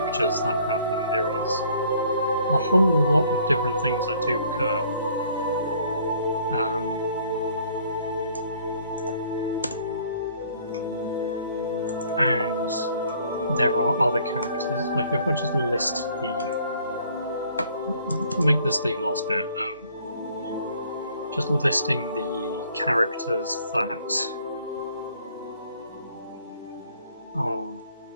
that happen. There is a whole lot of different things that do occur. And there are other characters. Like if I just list make this the last bit. Just listing the characters that are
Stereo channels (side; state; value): both; inverted; correlation -0.60